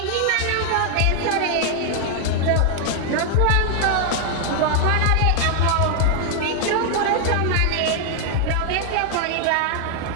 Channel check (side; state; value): both; different; correlation 0.00